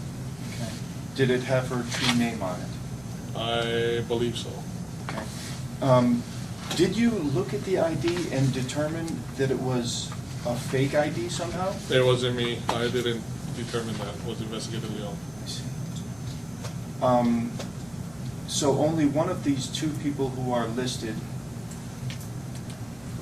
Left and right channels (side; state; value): right; noise; rumble, 23 dB below the sound